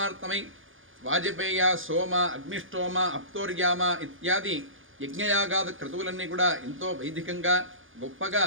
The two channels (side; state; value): left; late; 0.58 ms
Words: వాజపేయ సోమ అగ్నిష్టోమ అప్తోర్యామ ఇత్యాది యజ్ఞయాగాద క్రతువులన్నీ కూడా ఎంతో వైదికంగా గొప్పగా